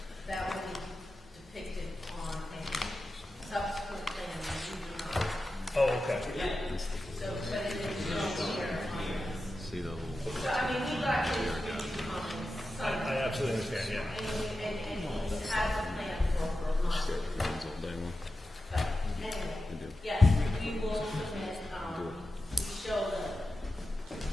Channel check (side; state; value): both; normal; correlation 0.92